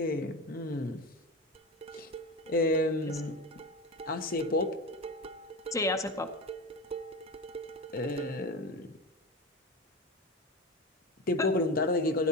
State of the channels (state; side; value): normal; both; correlation 0.24